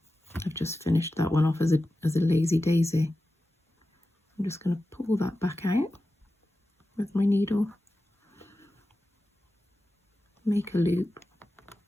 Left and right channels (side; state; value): both; normal; correlation 0.93